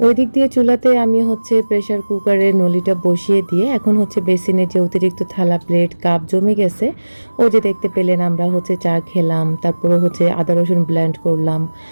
ওই দিক দিয়ে চুলাতে আমি হচ্ছে প্রেসার কুকারে নলিটা বসিয়ে দিয়ে এখন হচ্ছে বেসিনে যে অতিরিক্ত থালা প্লেট কাপ জমে গেছে, ও যে দেখতে পেলেন আমরা হচ্ছে চা খেলাম, তারপরে হচ্ছে আদা রসুন ব্লেন্ড করলাম,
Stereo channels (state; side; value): inverted; both; correlation -1.00